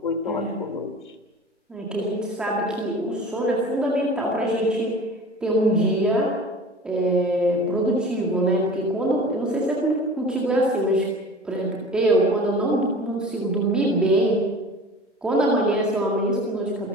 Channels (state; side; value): normal; both; correlation 0.40